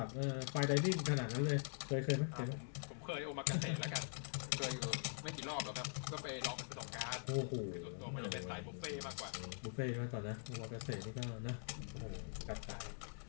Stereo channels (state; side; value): silent; right; digital silence